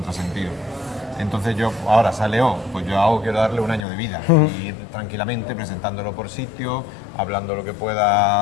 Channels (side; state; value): right; drops out; at 3.9 s